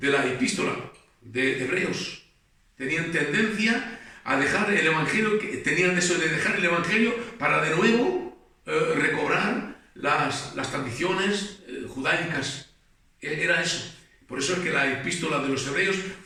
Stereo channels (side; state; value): both; identical; correlation 1.00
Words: epístola de Hebreos. Tenían tendencia a dejar el Evangelio, tenían eso de dejar el Evangelio para de nuevo recobrar las tradiciones judaicas. Era eso. Por eso es que la epístola de los hebreos